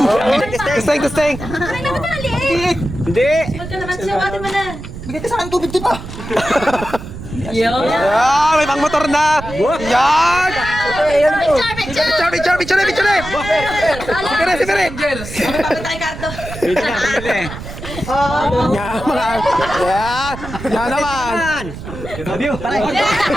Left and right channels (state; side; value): noise; right; rumble, 11 dB below the sound